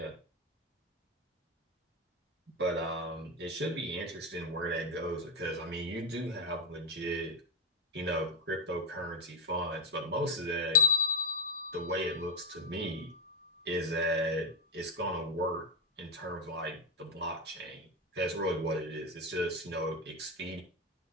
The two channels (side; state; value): both; normal; correlation 0.07